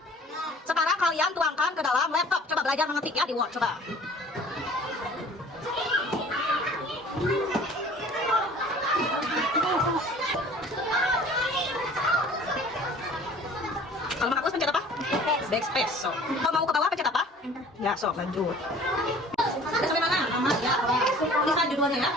Sekarang kalian tuangkan ke dalam laptop. Coba belajar mengetik ya di Word, coba. Kalau menghapus pencet apa? Backspace. So, kalau mau ke bawah pencet apa? Ya, so lanjut. Udah sampai mana? Nama ya, tulisan judulnya ya.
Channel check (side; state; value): both; normal; correlation 0.48